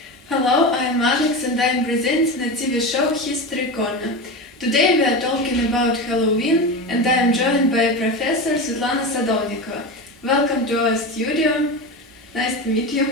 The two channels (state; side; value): normal; both; correlation 0.23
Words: Hello, I'm Alex and I'm presenting a TV show History Corner. Today we are talking about Halloween and I am joined by Professor Svetlana Sadovnikova. Welcome to our studio. Nice to meet you.